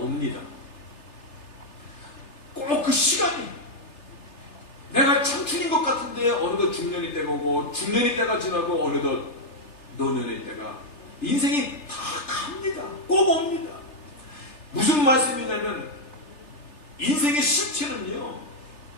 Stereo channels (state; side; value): late; right; 3.3 ms